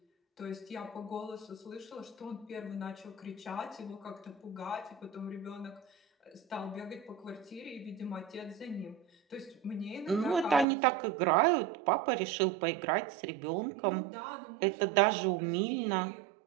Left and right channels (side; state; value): left; drops out; at 10.7 s